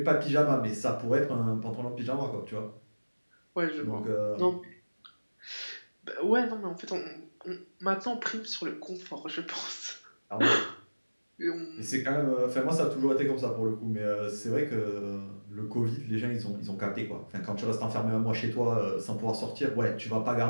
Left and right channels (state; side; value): inverted; both; correlation -1.00